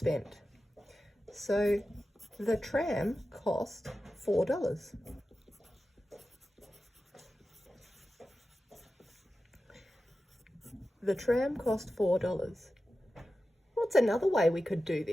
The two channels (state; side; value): normal; both; correlation 0.93